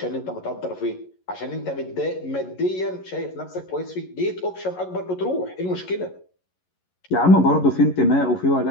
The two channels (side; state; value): right; late; 11 ms